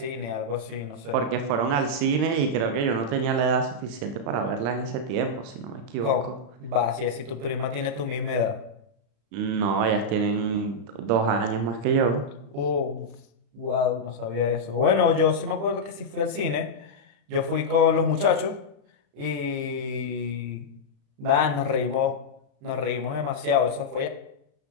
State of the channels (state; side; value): late; left; 35 ms